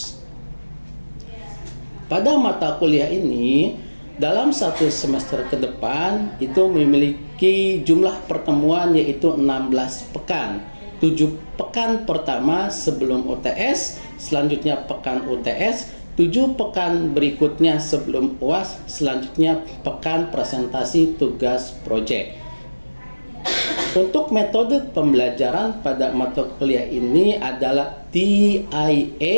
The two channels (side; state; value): both; inverted; correlation -1.00